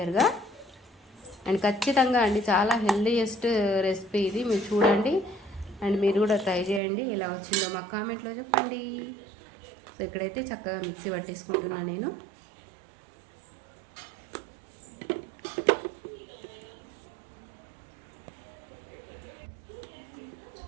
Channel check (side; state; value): left; drops out; at 6.8 s